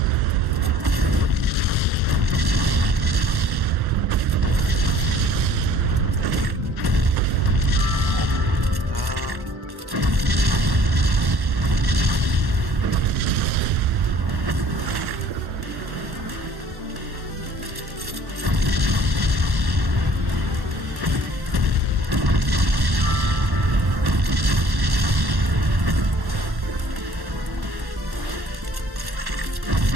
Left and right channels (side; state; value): left; late; 1.1 ms